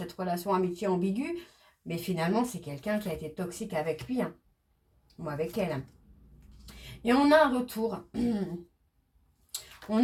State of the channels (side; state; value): both; identical; correlation 1.00